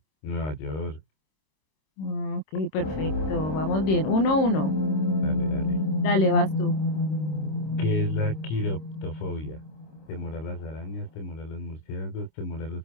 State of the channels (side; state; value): right; late; 26 ms